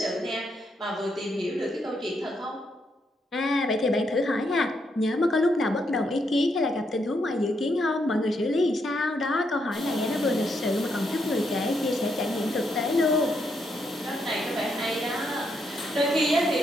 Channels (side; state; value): both; normal; correlation 0.78